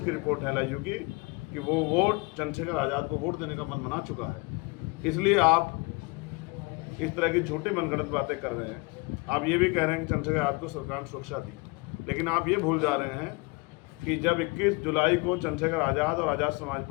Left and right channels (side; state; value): right; quieter; 27.5 dB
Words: की रिपोर्ट है LIU की, कि वो वोट चंद्रशेखर आज़ाद को वोट देने का मन बना चुका है। इसलिए आप इस तरह की झूठी मनगढ़ंत बातें कर रहे हैं। आप ये भी कह रहे हैं कि चंद्रशेखर आज़ाद को सरकार ने सुरक्षा दी, लेकिन आप ये भूल जा रहे हैं कि जब 21 जुलाई को चंद्रशेखर आज़ाद और आज़ाद समाज